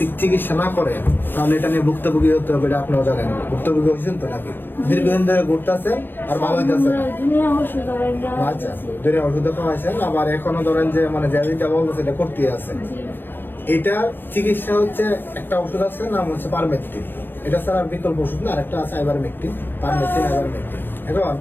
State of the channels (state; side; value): late; right; 0.096 ms